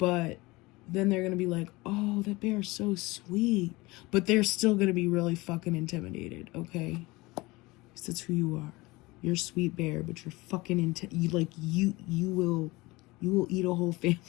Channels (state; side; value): quieter; right; 22.1 dB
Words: then they're going to be like, oh, that bear is so sweet. But they're still going to be really fucking intimidated, okay? Because that's who you are. You're a sweet bear, but you're fucking you will eat a whole